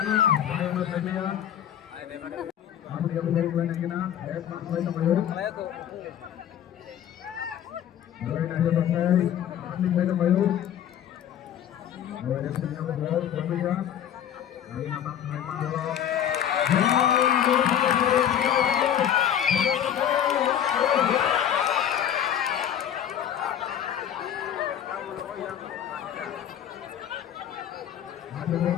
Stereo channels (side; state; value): right; quieter; 10.0 dB